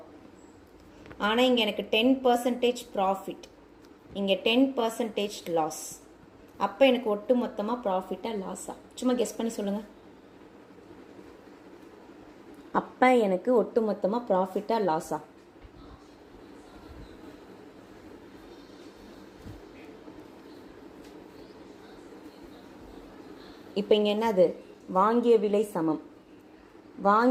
ஆனால் இங்கே எனக்கு 10% ப்ராஃபிட். இங்கே 10% லாஸ். அப்போ எனக்கு ஒட்டு மொத்தமாக ப்ராஃபிட்டாக லாஸா? சும்மா கெஸ் பண்ணி சொல்லுங்கள். அப்போ எனக்கு ஒட்டு மொத்தமாக ப்ராஃபிட்டாக லாஸா? இப்போ இங்கே என்னது? வாங்கிய விலை சமம்.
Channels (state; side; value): identical; both; correlation 1.00